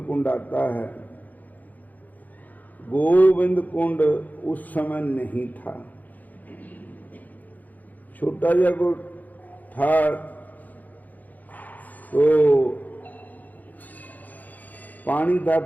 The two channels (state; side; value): late; right; 0.081 ms